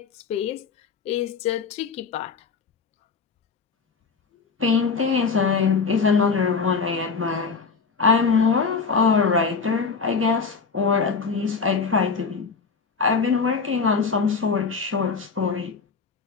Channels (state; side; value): quieter; right; 5.2 dB